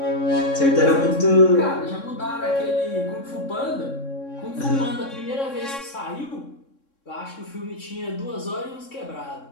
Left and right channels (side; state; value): right; late; 3.6 ms